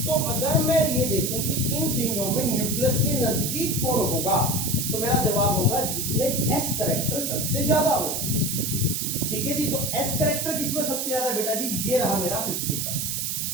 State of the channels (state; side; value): noise; right; hiss, 1 dB below the sound